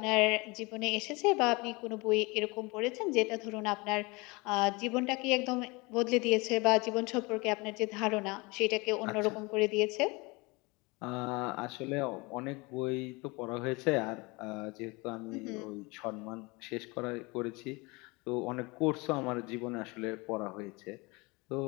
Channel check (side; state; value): right; quieter; 25.8 dB